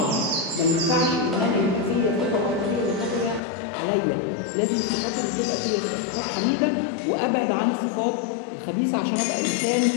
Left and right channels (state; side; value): drops out; right; at 3.4 s